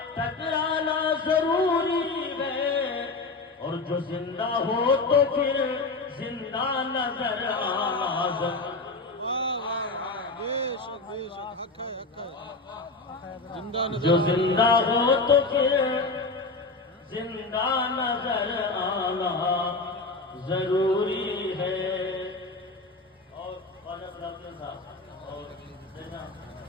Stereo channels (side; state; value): right; quieter; 3.5 dB